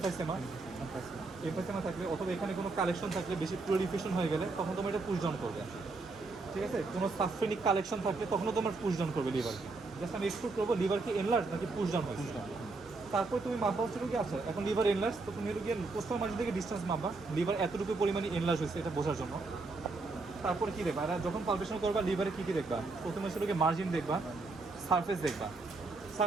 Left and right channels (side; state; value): left; quieter; 3.6 dB